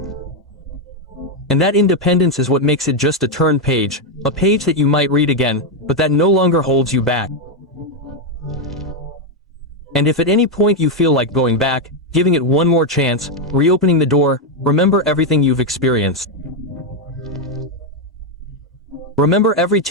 And that independence is what makes it just a turned page, a page that you might read again, but that no longer holds you back. And if at any point you feel like going back, giving it one more chance, reopening the door, remember everything you've experienced. Remember every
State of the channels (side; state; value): both; normal; correlation 0.03